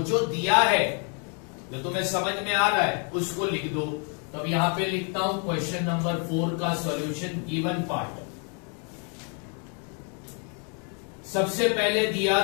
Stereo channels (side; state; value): right; quieter; 39.0 dB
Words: जो दिया है, जो तुम्हें समझ में आ रहा है, उसको लिख दो। तो अब यहां पे लिखता हूं क्वेश्चन नंबर 4 का सॉल्यूशन, गिवन पार्ट। सबसे पहले दिया